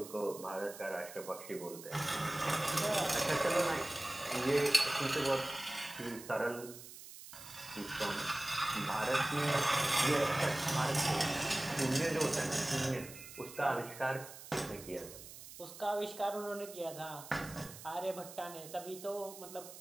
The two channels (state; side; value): noise; right; hiss, 15 dB below the sound